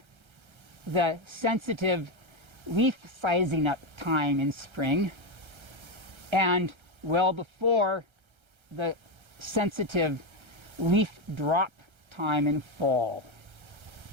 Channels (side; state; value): left; late; 1.3 ms